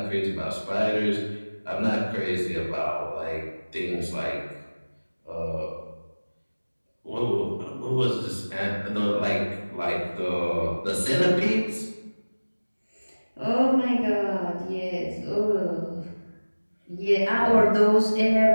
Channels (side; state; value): both; inverted; correlation -1.00